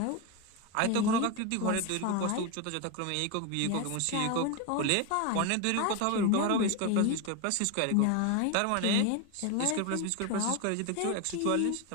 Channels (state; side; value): different; both; correlation 0.02